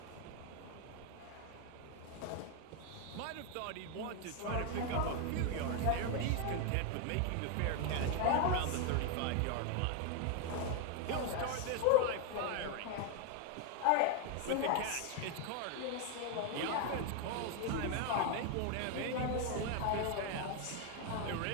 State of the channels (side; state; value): both; different; correlation 0.01